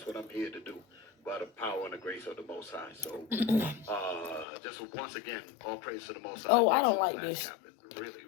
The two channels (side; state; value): right; drops out; at 4.5 s